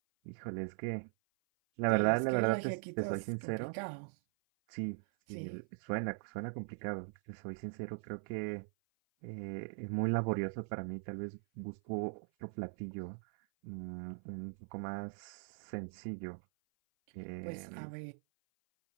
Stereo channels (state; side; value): silent; left; 51 dB below the other